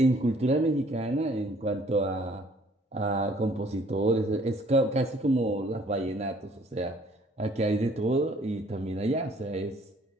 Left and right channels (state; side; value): normal; both; correlation 0.59